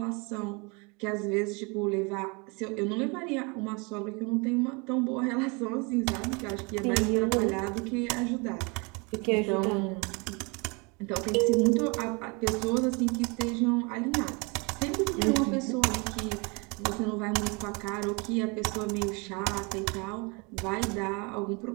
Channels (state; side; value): quieter; left; 29.9 dB